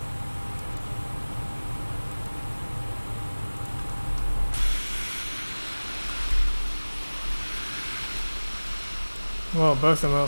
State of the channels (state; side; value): inverted; both; correlation -1.00